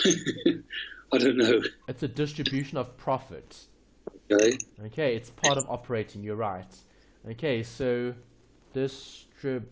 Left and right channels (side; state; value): both; identical; correlation 1.00